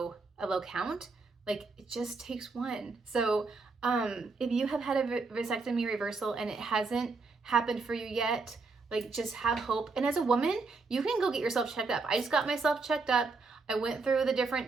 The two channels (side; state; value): left; quieter; 4.1 dB